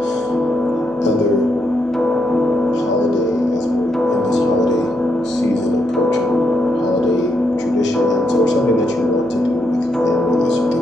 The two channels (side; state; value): right; noise; hum, 27 dB below the sound